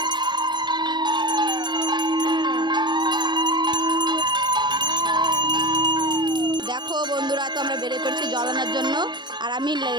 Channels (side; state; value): left; late; 0.22 ms